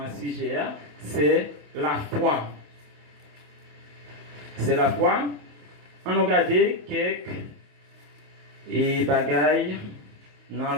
ce sujet, c'est la foi. C'est la foi. On a regardé quelques bagailles dans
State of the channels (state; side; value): late; left; 27 ms